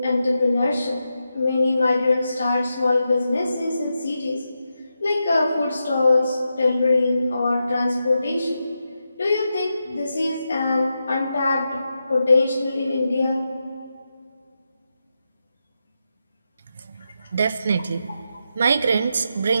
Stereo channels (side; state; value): both; inverted; correlation -0.87